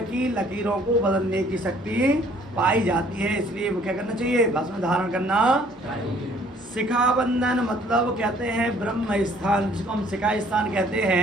की लकीरों को बदलने की शक्ति पाई जाती है, इसलिए क्या करना चाहिए? भस्म धारण करना। शिखा बंधन मतलब कहते हैं ब्रह्म स्थान, जिसको हम शिखा स्थान कहते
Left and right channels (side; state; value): both; normal; correlation 0.59